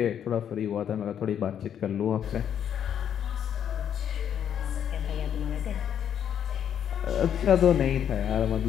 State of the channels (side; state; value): right; quieter; 9.1 dB